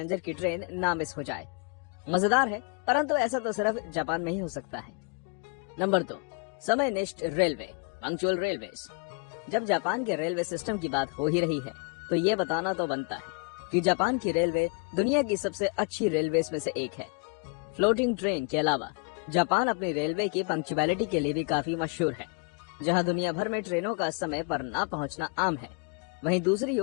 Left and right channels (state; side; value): quieter; right; 34.7 dB